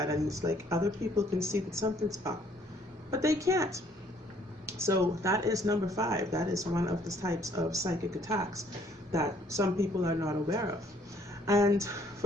and it's like other people can see that something's up, but they can't. So that is number 5. That is one of the types of psychic attacks that some people are not aware of. And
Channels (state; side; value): normal; both; correlation 0.62